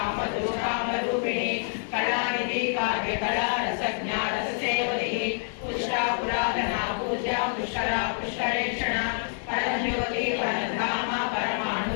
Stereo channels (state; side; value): silent; right; 58 dB below the other